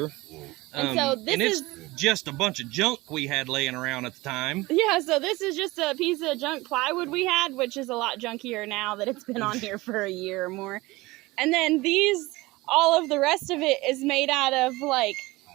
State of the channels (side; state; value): left; quieter; 21.0 dB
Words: And so this is just a bunch of junk we had laying around at the time. Yeah, so this is just a piece of junk plywood we had, which is a lot junkier now that it's been on here for a year or more. And then all of the rest of it is made out of like